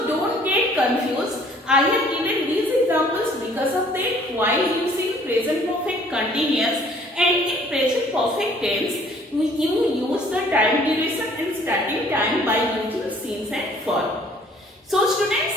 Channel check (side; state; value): both; normal; correlation 0.57